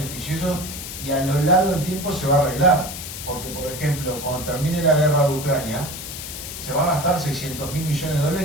y a lo largo del tiempo se va a arreglar. Porque, por ejemplo, cuando termine la guerra de Ucrania, se va a gastar 600.000 millones de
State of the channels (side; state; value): left; noise; hiss, 9 dB below the sound